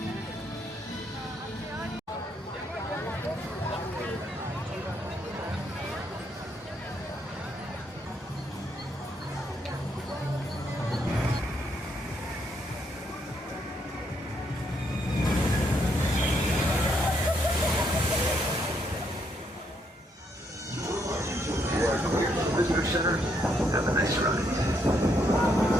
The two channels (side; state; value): both; normal; correlation 0.74